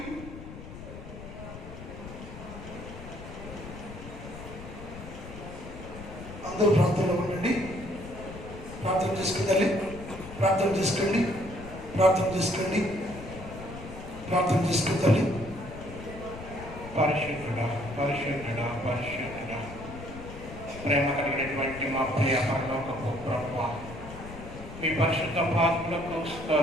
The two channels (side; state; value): left; noise; rumble, 12 dB below the sound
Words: అందరూ ప్రార్థనలో ఉండండి. ప్రార్థన చేసుకుందాలి. ప్రార్థన చేసుకోండి. ప్రార్థన చేసుకోండి. ప్రార్థన చేసుకుందాలి. పరిశుద్ధుడా, పరిశుద్ధుడా, పరిశుద్ధుడా, ప్రేమ కలిగినటువంటి మా ప్రియ పరలోకపు ప్రభువా, మీ పరిశుద్ధ పాత్రలకు